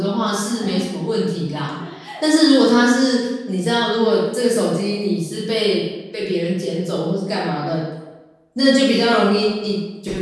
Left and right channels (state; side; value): identical; both; correlation 1.00